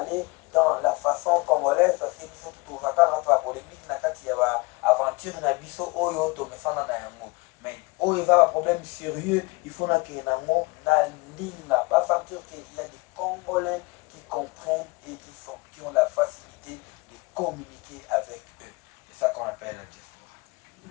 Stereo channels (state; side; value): quieter; right; 26.3 dB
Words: dans la façon congolaise parce que nous sommes tout au vacances entre la polémique na kati ya aventure na biso oyo to mesana na yango. Mais oh il va un problème sérieux, il faut que nango na linga pas sentir qu'il y a des Congolais qui comprennent et qui ont la facilité de communiquer avec eux. C'est ça qu'on appelle la